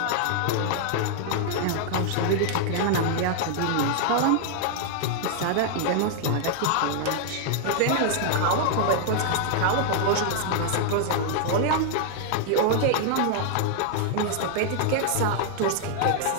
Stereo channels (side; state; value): both; different; correlation 0.00